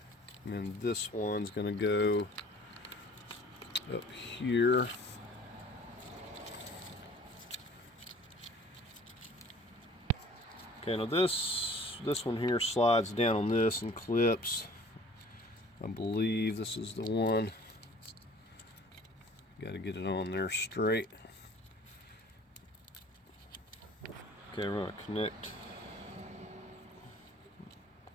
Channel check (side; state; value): both; normal; correlation 0.49